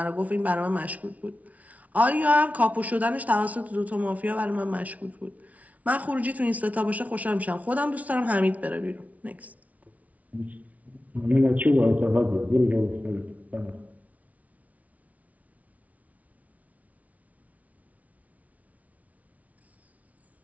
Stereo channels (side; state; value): left; late; 0.070 ms